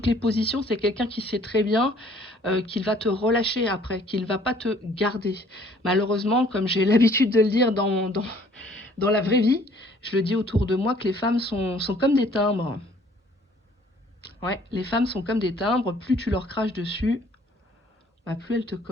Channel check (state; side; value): normal; both; correlation 0.58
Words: positions, c'est quelqu'un qui sait très bien qu'il va te relâcher après, qu'il ne va pas te garder. Malheureusement, comme j'ai l'habitude de le dire dans la vraie vie, je le dis autour de moi que les femmes sont comme des timbres. Ouais, les femmes sont comme des timbres, plus tu leur craches dessus, bah, plus elles te